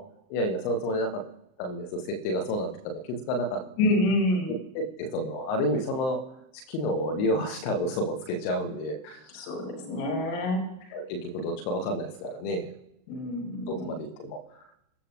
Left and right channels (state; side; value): late; right; 38 ms